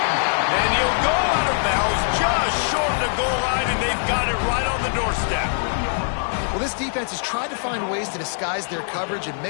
And he'll go out of bounds just short of the goal line, and they've got it right on the doorstep. Well, this defense has tried to find ways to disguise their coverage and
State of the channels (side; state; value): right; silent; digital silence